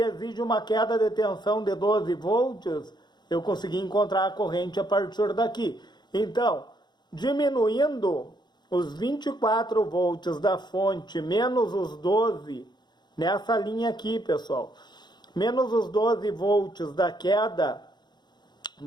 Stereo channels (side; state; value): right; late; 0.21 ms